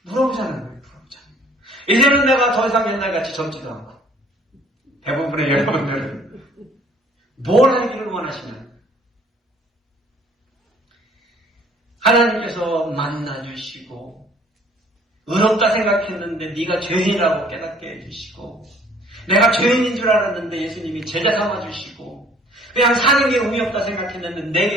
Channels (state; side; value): normal; both; correlation 0.57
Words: 물어보자는 거예요, 물어보자는 거예요. 이제는 내가 더 이상 옛날같이 젊지도 않고, 대부분의 여러분들은 뭘 하기를 원하시나요? 하나님께서 만나주시고, 의롭다 생각했는데 네가 죄인이라고 깨닫게 해주시고, 내가 죄인인 줄 알았는데 예수님이 제자 삼아주시고, 그냥 사는 게 의미 없다 생각했는데